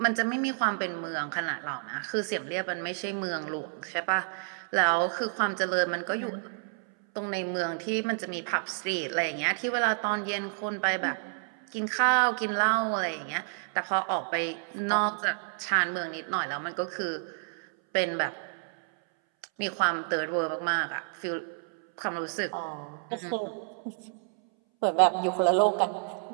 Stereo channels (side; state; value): left; silent; 58 dB below the other